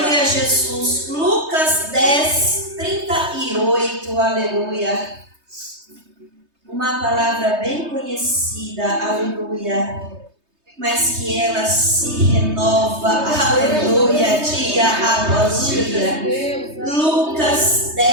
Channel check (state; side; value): late; left; 3.2 ms